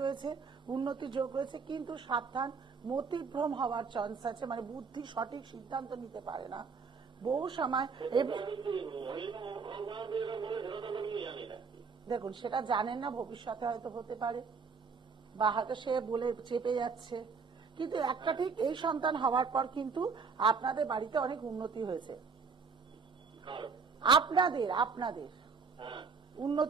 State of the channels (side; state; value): left; quieter; 5.3 dB